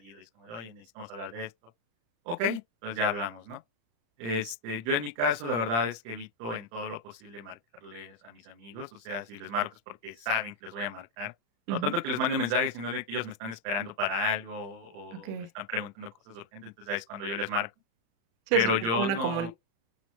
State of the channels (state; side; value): late; left; 35 ms